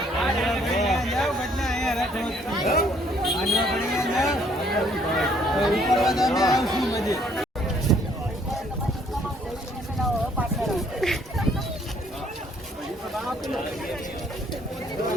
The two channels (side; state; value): both; normal; correlation 0.64